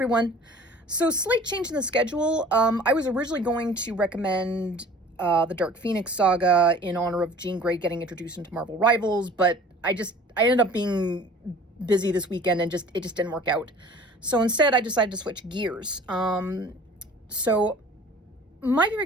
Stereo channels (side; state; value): both; normal; correlation 0.47